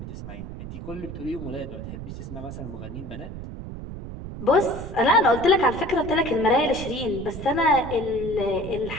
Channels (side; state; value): right; noise; rumble, 9 dB below the sound